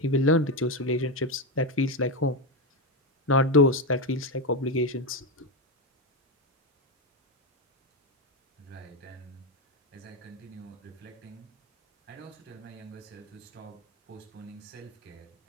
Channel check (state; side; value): normal; both; correlation 0.10